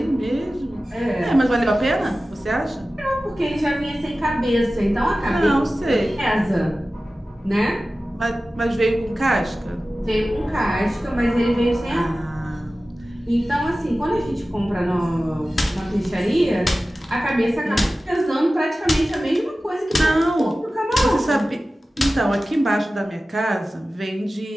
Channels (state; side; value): normal; both; correlation 0.96